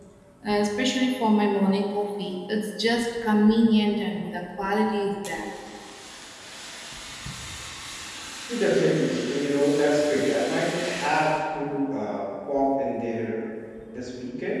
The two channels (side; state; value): both; identical; correlation 1.00